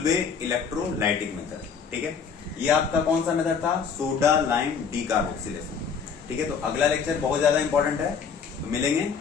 इलेक्ट्रोलाइटिक मेथड, ठीक है? ये आपका कौन सा मेथड था? सोडा लाइम डीकार्बोक्सिलेशन, ठीक है? तो अगला लेक्चर बहुत ज्यादा इंपॉर्टेंट है, तो मिलेंगे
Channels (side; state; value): right; quieter; 6.2 dB